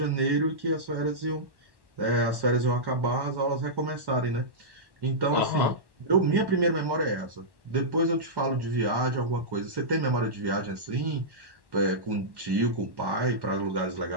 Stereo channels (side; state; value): left; late; 1.1 ms